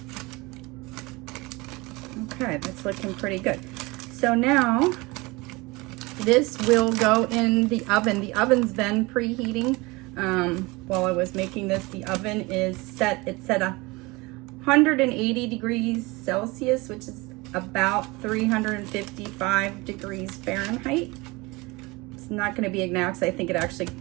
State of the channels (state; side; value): quieter; left; 23.8 dB